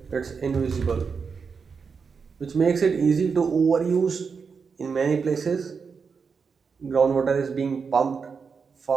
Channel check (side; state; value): left; quieter; 5.6 dB